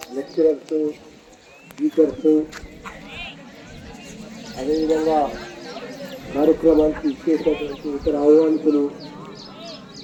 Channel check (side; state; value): both; identical; correlation 1.00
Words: లెక్చరర్స్, టీచర్స్, అదేవిధంగా కార్యక్రమానికి ఇచ్చేసినటువంటి ఇతర ఆహ్వానితులు